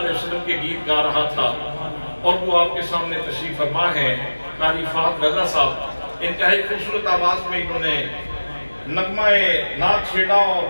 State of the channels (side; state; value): both; inverted; correlation -1.00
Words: وسلم کے گیت گا رہا تھا اور وہ آپ کے سامنے تشریف فرما ہے قاری فہد رضا صاحب انتہائی خوبصورت آواز میں انہوں نے نغمہ نعت چھیڑا اور